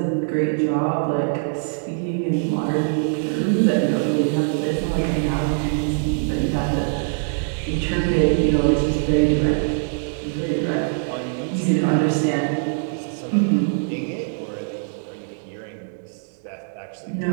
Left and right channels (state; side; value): silent; left; digital silence